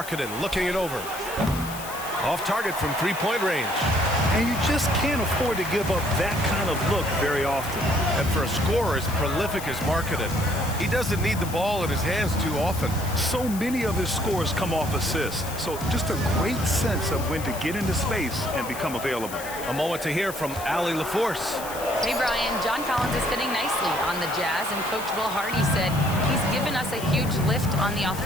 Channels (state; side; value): noise; left; hiss, 12 dB below the sound